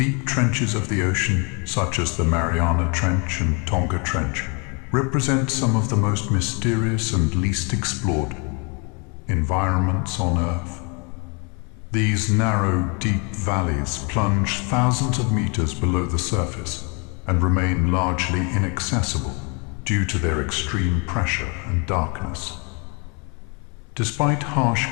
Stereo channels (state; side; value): quieter; right; 33.6 dB